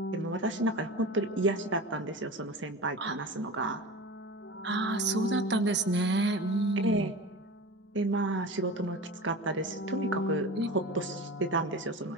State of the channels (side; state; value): both; normal; correlation 0.32